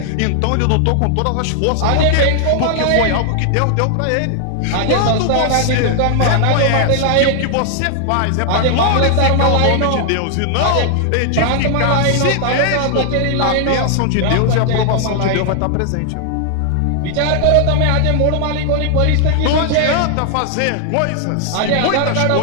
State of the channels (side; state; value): both; different; correlation 0.00